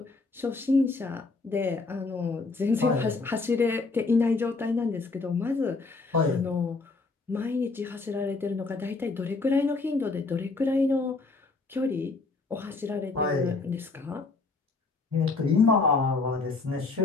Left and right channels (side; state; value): right; quieter; 3.9 dB